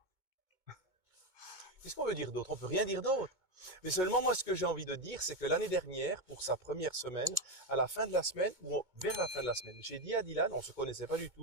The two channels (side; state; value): left; late; 2.2 ms